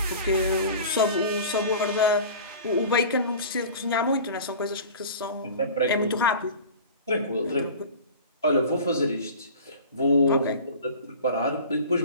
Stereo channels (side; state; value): both; inverted; correlation -0.39